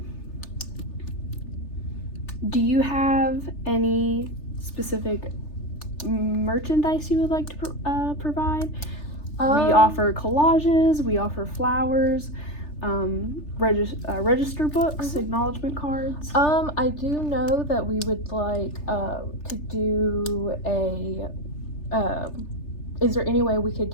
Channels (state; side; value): late; right; 3.3 ms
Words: Do you have any specific merchandise you would like to provide? We offer collages, we offer flowers, register books, acknowledgement cards. I do know that we would like to do a is there any way we could